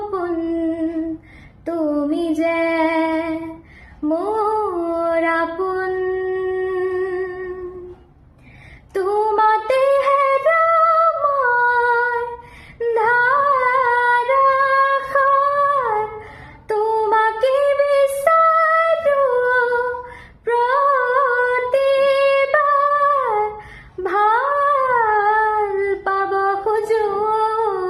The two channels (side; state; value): both; identical; correlation 1.00